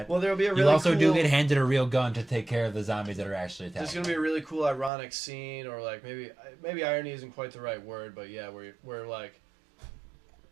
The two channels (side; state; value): left; drops out; at 4.9 s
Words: Well, there'll be a really you also do cool- get handed a real gun to take care of the zombies that are actually attacking. There's gonna be a really cool, ironic scene, or like maybe irony isn't quite the right word, but yeah, where like